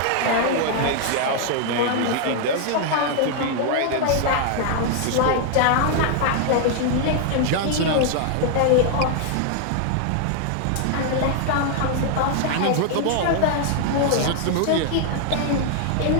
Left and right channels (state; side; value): different; both; correlation 0.00